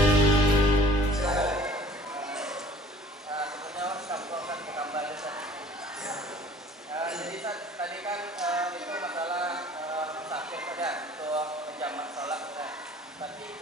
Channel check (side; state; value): both; normal; correlation 0.51